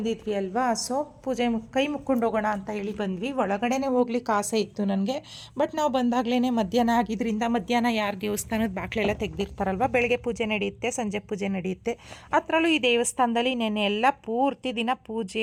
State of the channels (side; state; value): both; identical; correlation 1.00